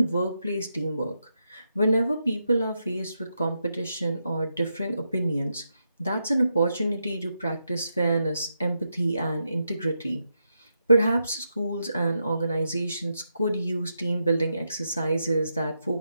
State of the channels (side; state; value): both; inverted; correlation -0.84